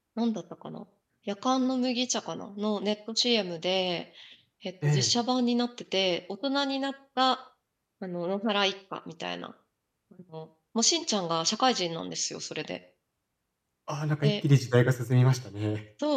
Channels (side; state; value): both; identical; correlation 1.00